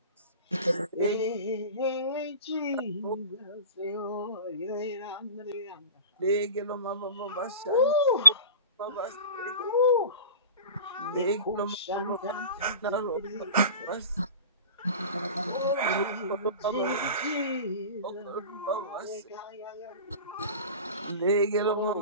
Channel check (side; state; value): both; inverted; correlation -0.35